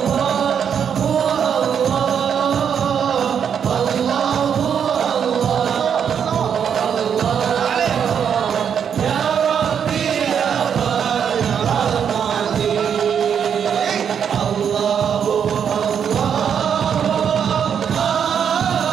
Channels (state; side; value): quieter; left; 7.8 dB